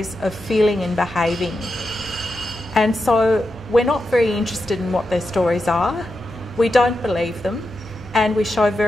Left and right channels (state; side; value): normal; both; correlation 0.88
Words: of feeling and behaving. And so we're not very interested in what their stories are, we don't believe them, and we show